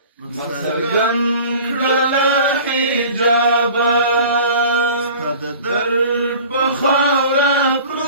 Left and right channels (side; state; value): both; inverted; correlation -0.43